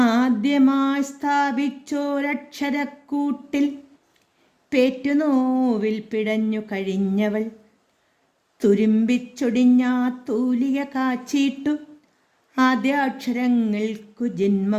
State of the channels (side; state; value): both; identical; correlation 1.00